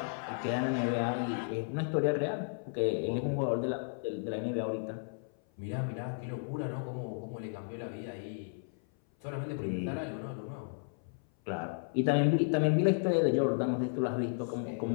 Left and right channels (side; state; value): right; silent; 55 dB below the other